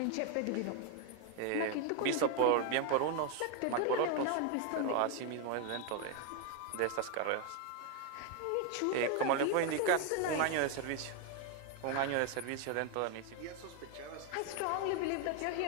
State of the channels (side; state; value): both; different; correlation 0.01